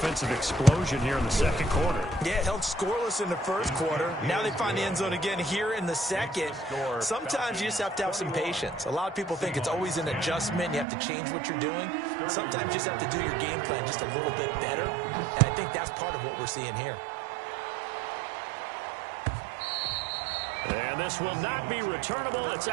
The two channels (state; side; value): drops out; left; at 10.9 s